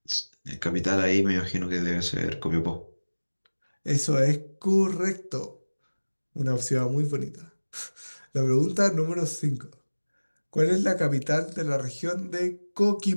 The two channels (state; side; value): inverted; both; correlation -1.00